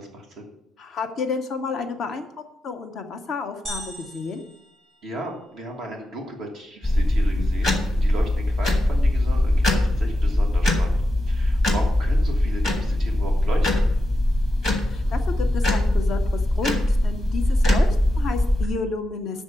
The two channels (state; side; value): normal; both; correlation 0.89